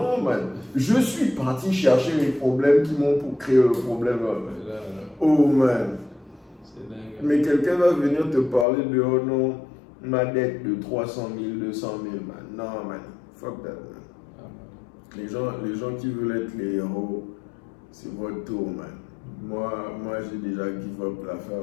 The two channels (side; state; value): right; drops out; at 8.7 s